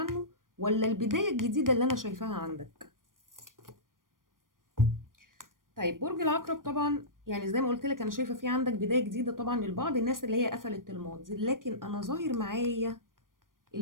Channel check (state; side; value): late; left; 0.90 ms